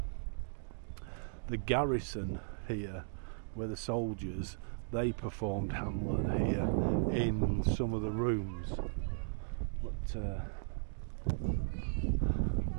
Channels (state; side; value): silent; left; digital silence